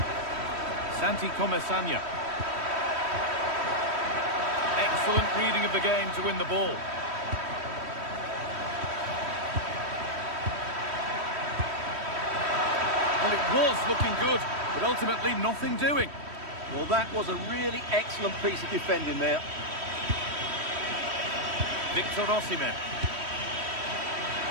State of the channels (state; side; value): late; left; 3.1 ms